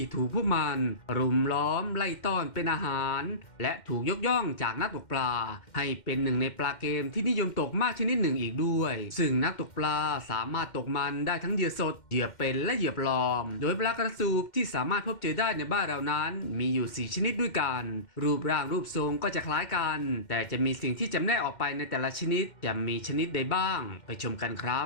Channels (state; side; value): late; right; 2.1 ms